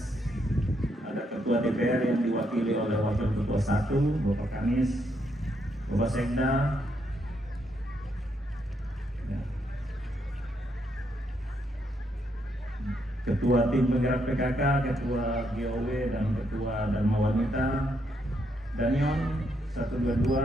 ada Ketua DPR yang diwakili oleh Wakil Ketua 1 Bapak Kanis, Bapak Sekda, Ketua Tim Penggerak PKK, Ketua GOW, dan Ketua Dharma Wanita, Danyon 122,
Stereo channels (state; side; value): normal; both; correlation 0.77